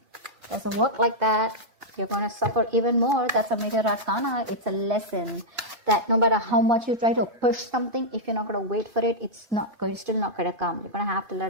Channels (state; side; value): late; left; 2.5 ms